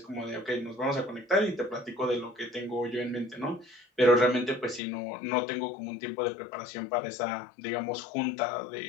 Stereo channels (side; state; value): right; drops out; at 4.8 s